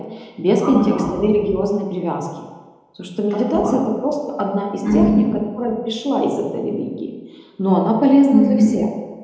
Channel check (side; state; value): both; identical; correlation 1.00